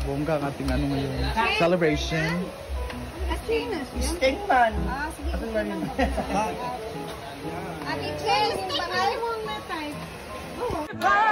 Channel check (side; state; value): both; identical; correlation 1.00